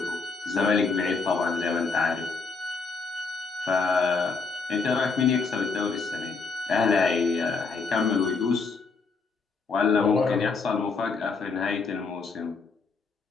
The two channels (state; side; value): quieter; right; 4.5 dB